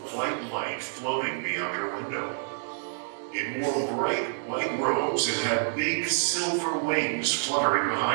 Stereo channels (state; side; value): silent; left; 59 dB below the other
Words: white light floating beyond her window. It wore bright white robes and had big silver wings fluttering